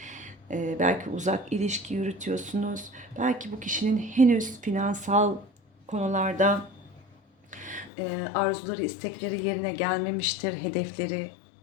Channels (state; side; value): drops out; right; at 7.9 s